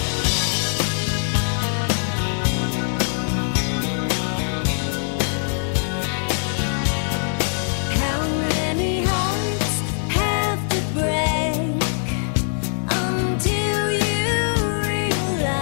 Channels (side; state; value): right; silent; 64 dB below the other